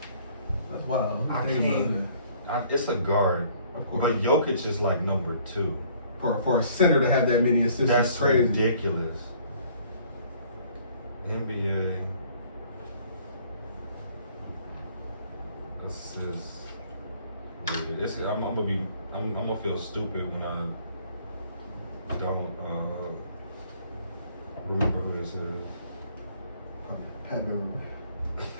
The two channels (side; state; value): both; inverted; correlation -0.59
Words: wild. I Think can't. about It's a guard, it. Of course. but Jokic is like number 2. For a center to have that many assists That's is crazy. ridiculous. NBA assists. I'm gonna feel stupid when I don't remember who this is. Pat Beverly.